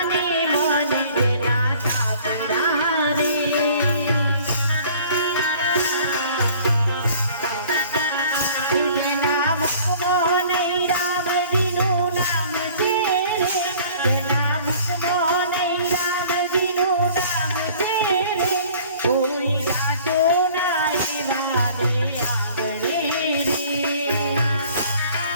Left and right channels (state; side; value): inverted; both; correlation -0.51